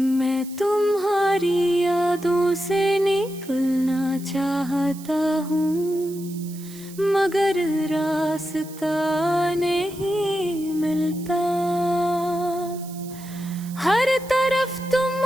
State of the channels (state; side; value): noise; right; hiss, 18 dB below the sound